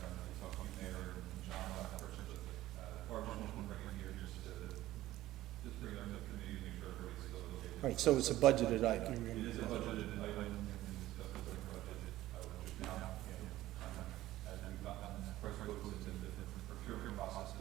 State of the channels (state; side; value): quieter; left; 15.4 dB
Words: don't know if you talk to you, Mayor, and John, about the purchase of Barbara just want to bring it here just bring it up to the committee and make sure everybody's still okay. All right, so it's a budgeted item. It is a budgeted item and discussed with our budget, just now, as we've gotten price quotes into the procurement process,